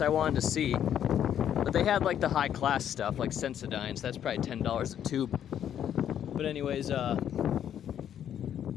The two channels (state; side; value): quieter; right; 9.8 dB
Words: wanted to see, but they had like the high class stuff, like Sensodyne, so that's probably $10 a tube. But anyways,